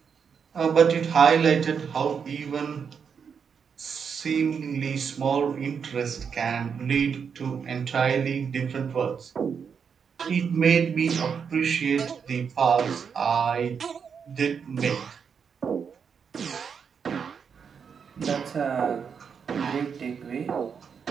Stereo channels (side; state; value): left; quieter; 6.6 dB